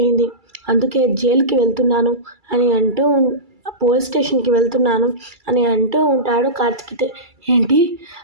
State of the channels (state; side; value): late; left; 2.3 ms